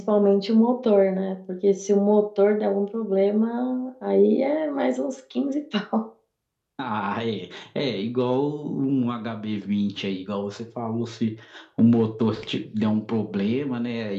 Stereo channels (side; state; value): both; identical; correlation 1.00